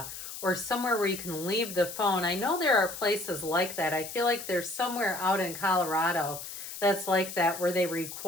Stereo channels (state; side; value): noise; left; hiss, 10 dB below the sound